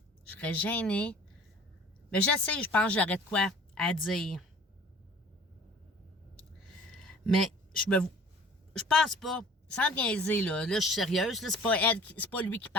je serais gênée. Mais je sais, je pense que j'aurais de quoi à dire. Mais je pense pas, sans niaiser, là je suis sérieuse, là, c'est pas lui qui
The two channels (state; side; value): normal; both; correlation 0.48